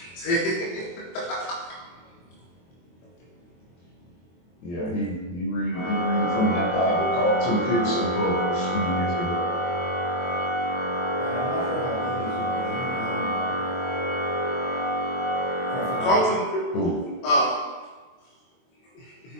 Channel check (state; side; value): late; right; 23 ms